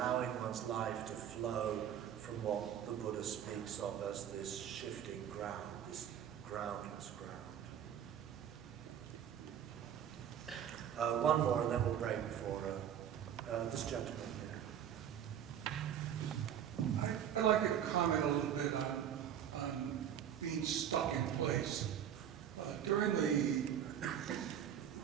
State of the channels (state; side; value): quieter; left; 9.5 dB